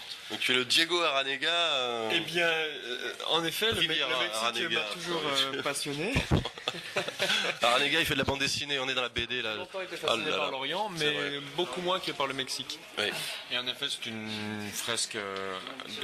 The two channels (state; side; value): identical; both; correlation 1.00